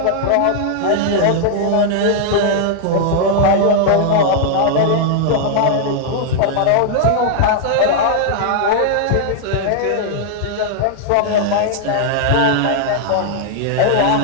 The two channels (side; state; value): both; different; correlation -0.01